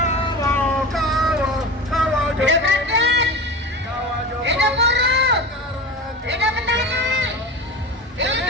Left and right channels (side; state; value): both; normal; correlation 0.29